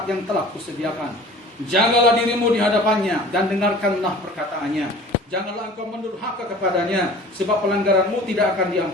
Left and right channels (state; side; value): normal; both; correlation 0.44